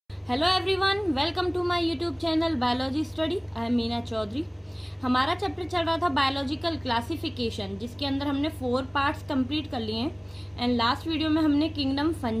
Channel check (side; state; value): both; identical; correlation 1.00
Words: Hello everyone, welcome to my YouTube channel biology study. I am Meena Chaudhary. हमारा चैप्टर चल रहा था बायोलॉजिकल क्लासिफिकेशन, जिसके अंदर हमने 4 पार्ट्स कंप्लीट कर लिए हैं। एंड लास्ट वीडियो में हमने किंगडम